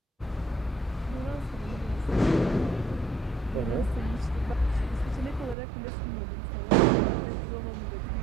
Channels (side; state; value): left; drops out; at 5.6 s